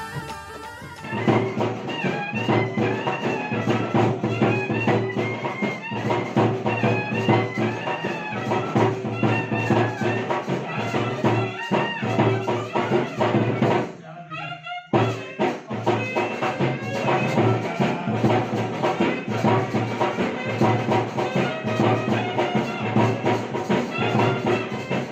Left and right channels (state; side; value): identical; both; correlation 1.00